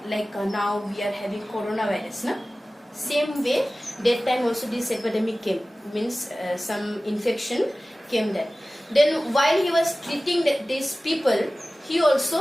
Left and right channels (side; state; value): both; normal; correlation 0.97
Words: we are having coronavirus, na? Same way that time also this epidemic came, means some infection came there. Then while he was treating these people, he